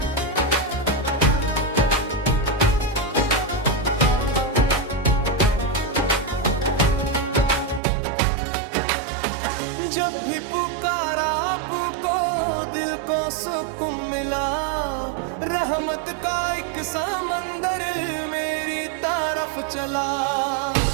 जब भी पुकारा आपको दिल को सुकून मिला। रहमत का एक समंदर मेरी तरफ चला।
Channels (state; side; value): drops out; left; at 7.8 s